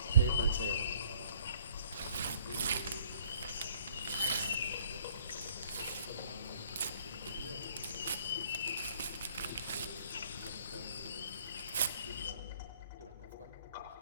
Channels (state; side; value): inverted; both; correlation -0.60